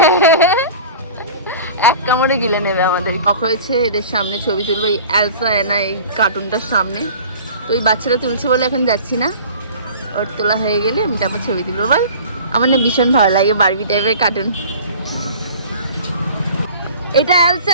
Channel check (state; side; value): inverted; both; correlation -0.42